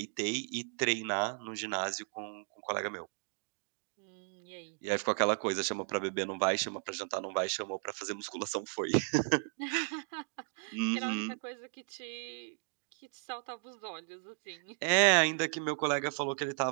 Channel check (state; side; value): silent; left; 54 dB below the other